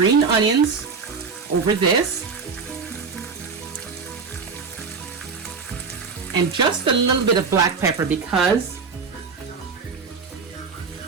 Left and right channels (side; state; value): left; quieter; 5.1 dB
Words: onions over this, and just a little bit of black pepper because